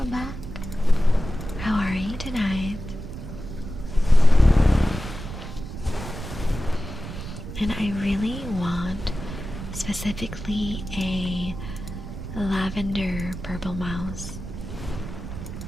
back. How are you tonight? And I really want specifically a lavender purple mouse.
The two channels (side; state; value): right; noise; rumble, 9 dB below the sound